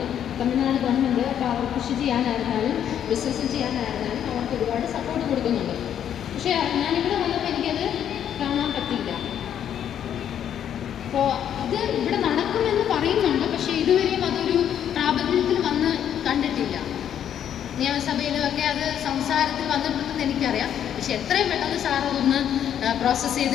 തമിഴ്നാട് ഗവൺമെൻറ് അപ്പോൾ അവർ കൃഷി ചെയ്യാനായിരുന്നാലും ബിസിനസ് ചെയ്യാനായിരുന്നാലും അവർക്ക് ഒരുപാട് സപ്പോർട്ട് കൊടുക്കുന്നുണ്ട്. പക്ഷേ ഞാനിവിടെ വന്നപ്പോൾ എനിക്കത് കാണാൻ പറ്റില്ല. അപ്പോൾ ഇത് ഇവിടെ നടക്കുമെന്ന് പറയുന്നുണ്ട്, പക്ഷേ ഇതുവരെയും അതൊരു പ്രാബല്യത്തിൽ വന്ന് കണ്ടിട്ടില്ല. നിയമസഭയിലുമൊക്കെ അത് സംസാരത്തിൽ വന്നിട്ടുണ്ടെന്ന് എനിക്കറിയാം. പക്ഷെ എത്രയും പെട്ടെന്ന് സാർ അതൊന്ന് പ്രോസസ്സ്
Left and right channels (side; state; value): right; quieter; 9.6 dB